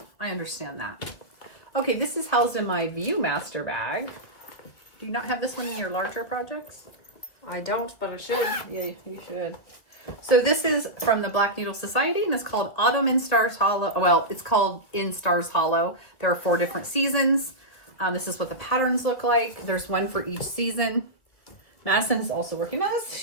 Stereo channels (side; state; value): right; late; 2.0 ms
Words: I understand that. Okay, this is housed in my Viewmaster bag. Do you not have this one in your larger projects? I don't, but I should. Yeah, you should. So this is from the Black Needle Society, and it's called Autumn in Stars Hollow. Well, it's called In Stars Hollow. There are 4 different seasons. This is what the patterns look like. There's one for each season. Madison is also working on this.